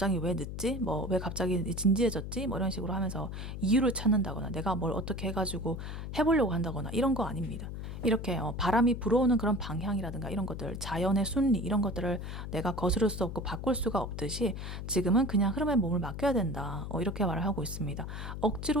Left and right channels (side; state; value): left; noise; hum, 7 dB below the sound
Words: 왜 늦지? 뭐 왜 갑자기 진지해졌지? 뭐 이런 식으로 하면서 이유를 찾는다거나 내가 뭘 어떻게 해가지고 해보려고 한다거나 이런 거 아닙니다. 이렇게 바람이 불어오는 그런 방향이라든가 이런 것들, 자연의 순리 이런 것들을 내가 거스를 수 없고 바꿀 수가 없듯이 지금은 그냥 흐름에 몸을 맡겨야 된다. 이렇게 말을 하고 있습니다.